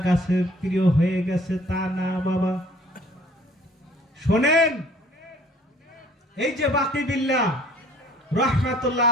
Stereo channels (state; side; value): normal; both; correlation 0.55